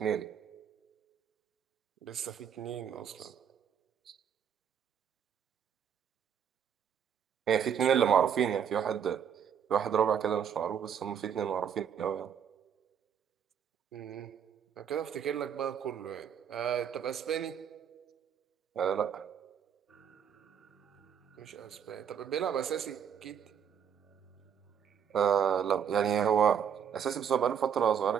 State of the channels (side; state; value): left; quieter; 8.1 dB